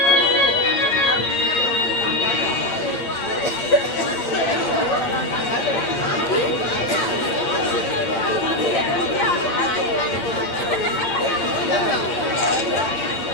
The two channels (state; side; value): late; right; 8.6 ms